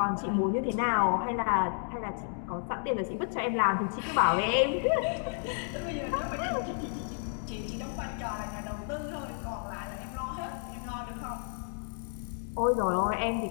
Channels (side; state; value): right; silent; 57 dB below the other